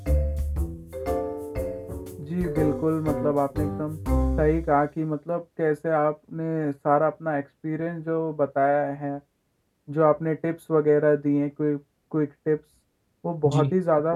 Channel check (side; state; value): both; identical; correlation 1.00